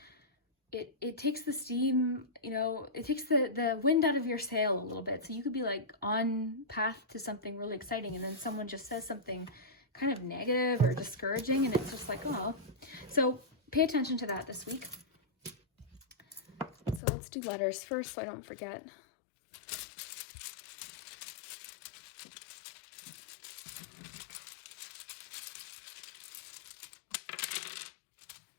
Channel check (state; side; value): drops out; right; at 17.0 s